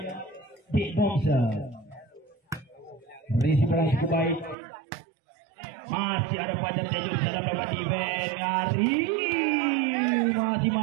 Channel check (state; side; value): drops out; left; at 4.5 s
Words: Big Boxer. Risi bola cukup baik. Masih ada Fajar Tejo di sana lewat event. Ari masih